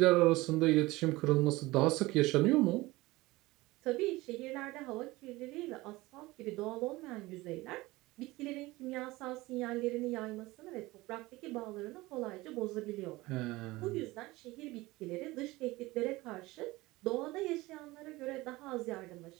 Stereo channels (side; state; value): left; quieter; 20.2 dB